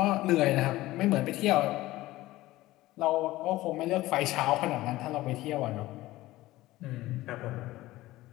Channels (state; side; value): quieter; right; 17.4 dB